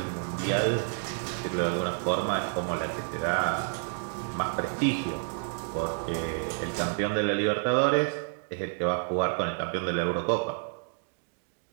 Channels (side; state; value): left; silent; 58 dB below the other